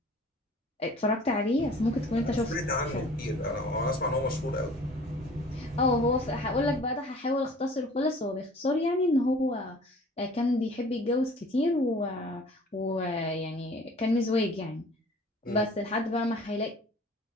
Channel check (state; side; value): normal; both; correlation 0.49